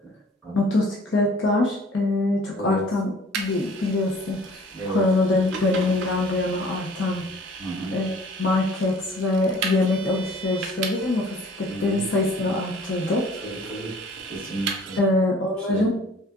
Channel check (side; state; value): both; normal; correlation 0.51